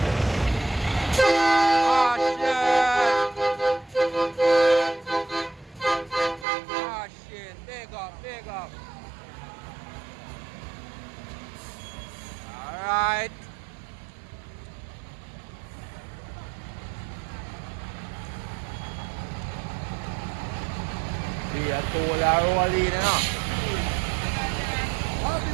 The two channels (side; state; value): left; drops out; at 6.5 s